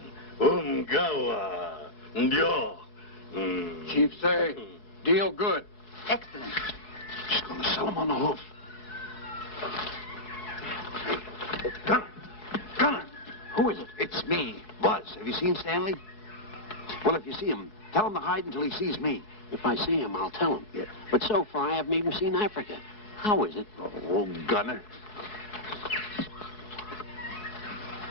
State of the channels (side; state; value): right; late; 4.7 ms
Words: Ndio. Chief say, deal good. Excellent. She's going to sell him on the hoof. Gunner! Who is it? It's me, Buzz. Have you seen Stanley? Well, if you see him, tell him to hide until he sees me. If I see him, I'll tell him. Yeah. But so far, I haven't even seen Africa. How is it? Oh, Gunner.